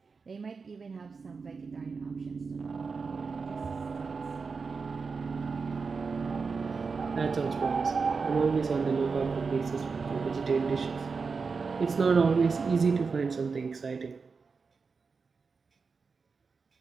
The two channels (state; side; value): quieter; left; 4.9 dB